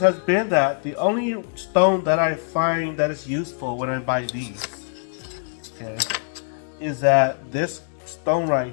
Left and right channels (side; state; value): right; silent; digital silence